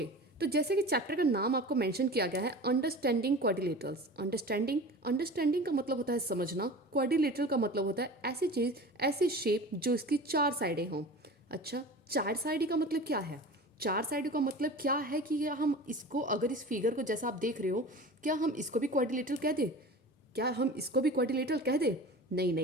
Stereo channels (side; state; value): both; normal; correlation 0.36